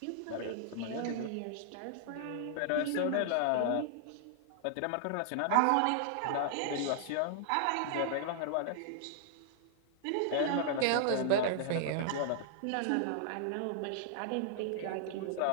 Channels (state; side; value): different; both; correlation -0.01